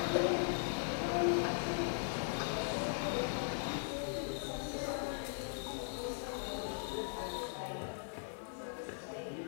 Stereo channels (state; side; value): silent; right; 52 dB below the other